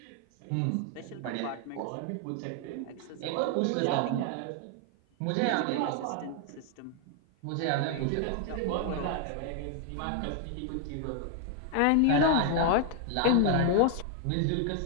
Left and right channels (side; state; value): both; different; correlation 0.00